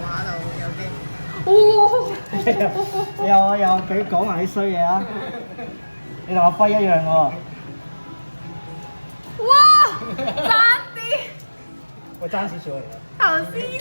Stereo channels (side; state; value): both; inverted; correlation -1.00